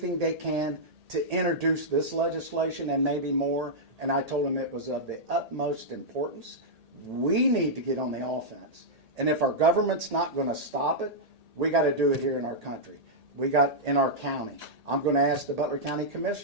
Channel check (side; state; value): left; late; 1.8 ms